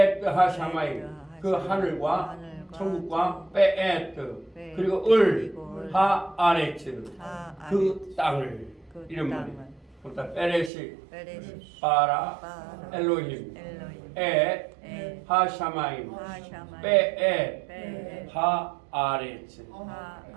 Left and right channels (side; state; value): left; drops out; at 10.7 s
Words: 하샤마임 그 하늘과 천국과 베에트 그리고 을 하아레츠 그 땅을 이런 말이에요. 그러니까 베레시 바라 엘로힘 에 하샤마임 베에 하아레츠